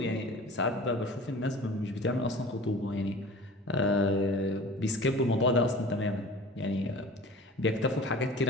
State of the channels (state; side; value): normal; both; correlation 0.41